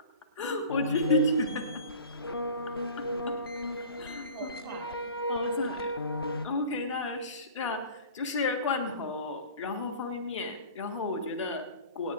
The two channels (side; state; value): both; inverted; correlation -0.41